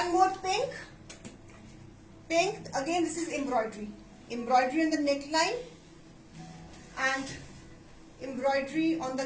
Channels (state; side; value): identical; both; correlation 1.00